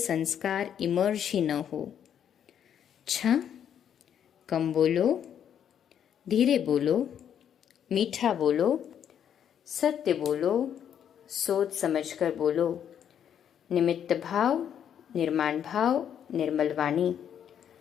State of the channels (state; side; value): quieter; right; 9.0 dB